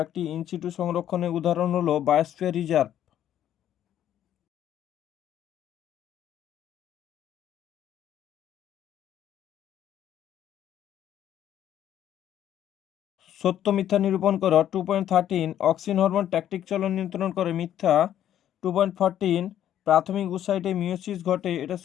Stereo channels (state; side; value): quieter; right; 10.9 dB